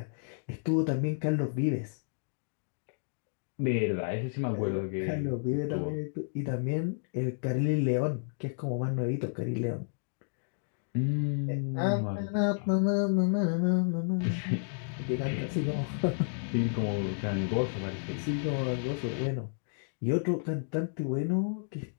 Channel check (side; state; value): right; silent; digital silence